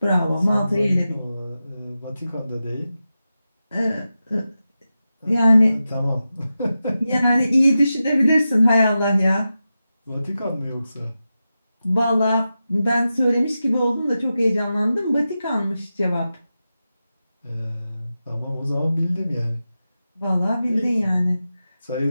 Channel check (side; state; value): both; inverted; correlation -0.92